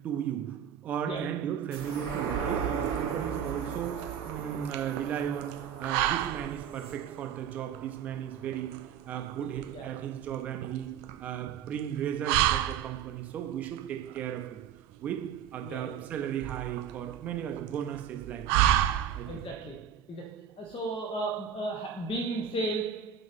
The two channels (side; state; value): left; quieter; 8.8 dB